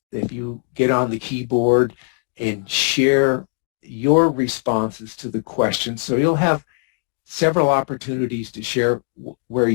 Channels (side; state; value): right; silent; 63 dB below the other